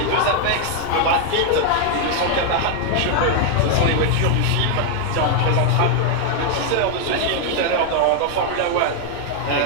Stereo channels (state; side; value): different; both; correlation 0.00